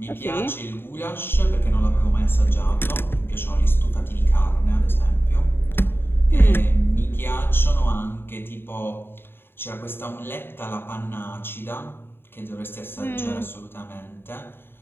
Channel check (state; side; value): late; right; 0.11 ms